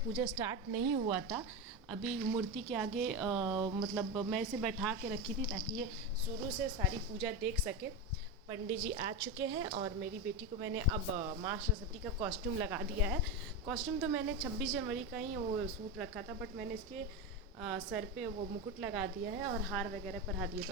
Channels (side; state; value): both; normal; correlation 0.16